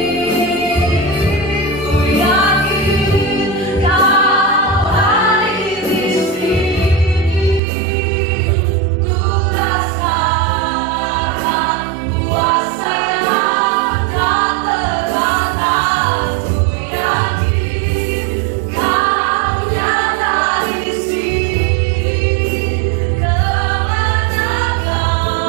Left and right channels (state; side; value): drops out; left; at 7.6 s